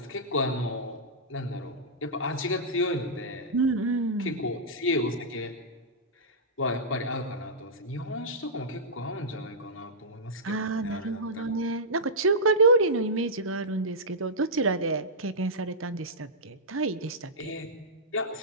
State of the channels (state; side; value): normal; both; correlation -0.12